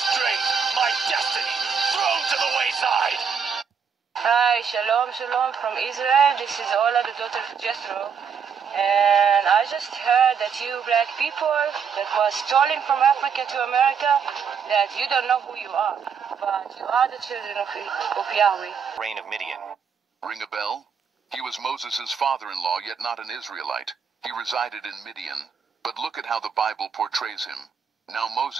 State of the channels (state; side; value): quieter; left; 6.7 dB